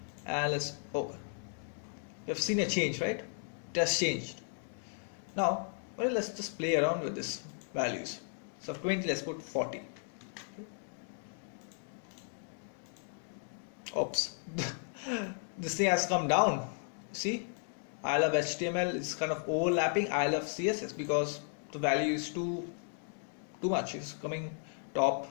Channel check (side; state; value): right; silent; 54 dB below the other